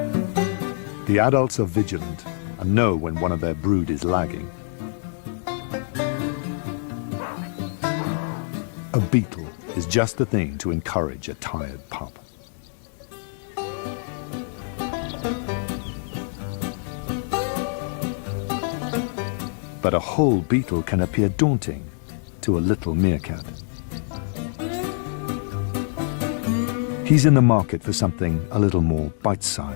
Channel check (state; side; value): silent; right; 62 dB below the other